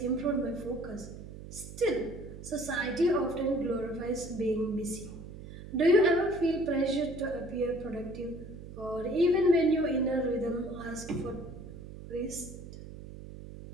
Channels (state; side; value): noise; right; hum, 13 dB below the sound